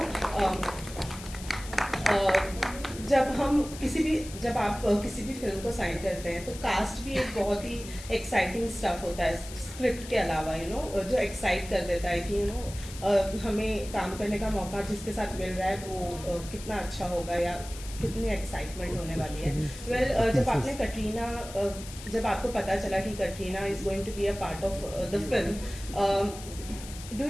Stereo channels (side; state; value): left; noise; hiss, 14 dB below the sound